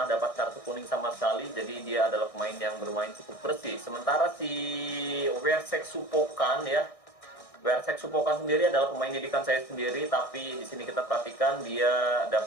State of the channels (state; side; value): late; right; 1.6 ms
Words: dapat kartu kuning sama sekali, jadi dia adalah pemain yang bermain cukup bersih. Sementara si Wersek Supokan sendiri adalah pemain didikan saya sendiri, tapi di sini kita perhatikan dia